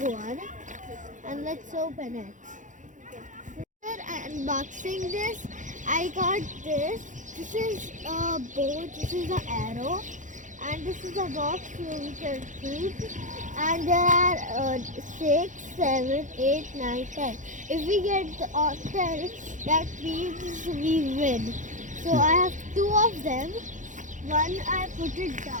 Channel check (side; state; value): left; late; 0.36 ms